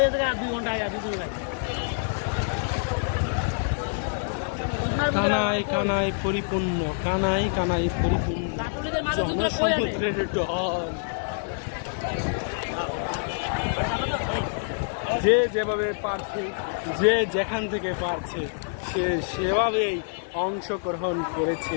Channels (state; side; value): silent; right; 59 dB below the other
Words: 2 ঘন্টা আয়া 2 ঘন্টা কানায় কানায় পরিপূর্ণ, কানায় কানায় পরিপূর্ণ ছাত্রলীগের মাঝে তোমরা কই আনে জনসমুদ্রের ঢল। যে যেভাবে পারছে, যে যেখান থেকে পারছে, সে সেভাবেই অংশগ্রহণ করেছে